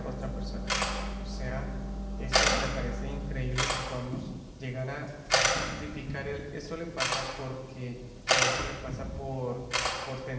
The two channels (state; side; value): identical; both; correlation 1.00